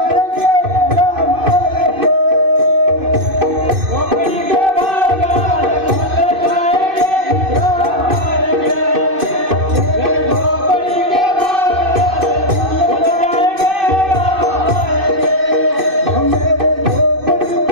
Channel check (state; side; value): late; left; 2.6 ms